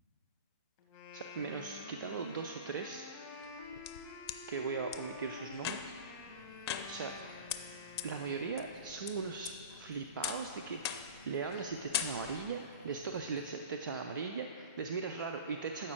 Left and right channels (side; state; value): both; inverted; correlation -0.34